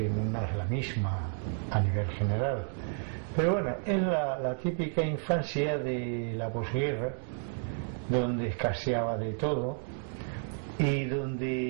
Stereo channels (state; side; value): silent; left; 57 dB below the other